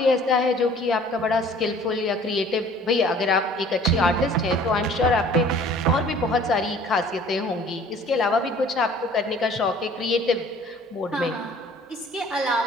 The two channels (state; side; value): normal; both; correlation 0.51